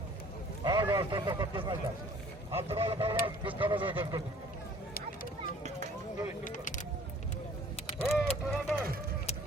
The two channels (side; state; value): both; normal; correlation 0.53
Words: Ağır ortada kapatmazlar. Abdülalı Beyler biz kanada götürdük. Turganda!